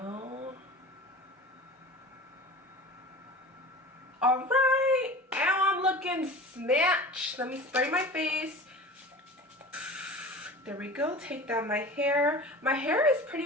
Alright, now I'm looking snatched. Let me spray my face. There we go. Take down my hair. My hair is pretty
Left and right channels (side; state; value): both; normal; correlation 0.36